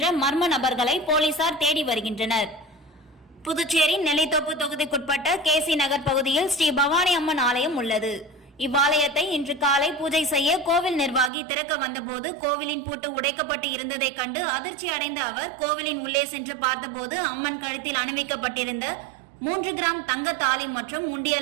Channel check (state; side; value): drops out; left; at 11.3 s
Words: மர்ம நபர்களை போலீசார் தேடி வருகின்றனர். புதுச்சேரி நெல்லித்தோப்பு தொகுதிக்குட்பட்ட KC நகர் பகுதியில் ஸ்ரீ பவானி அம்மன் ஆலயம் உள்ளது. இவ்வாலயத்தை இன்று காலை பூஜை செய்ய கோவில் நிர்வாகி திறக்க வந்தபோது கோவிலின் பூட்டு உடைக்கப்பட்டு இருந்ததை கண்டு அதிர்ச்சி அடைந்த அவர் கோவிலின் உள்ளே சென்று பார்த்தபோது அம்மன் கழுத்தில் அணிவிக்கப்பட்டிருந்த 3 கிராம் தங்க தாலி மற்றும்